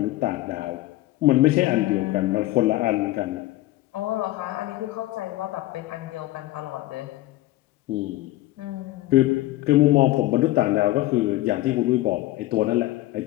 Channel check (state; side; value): quieter; right; 16.9 dB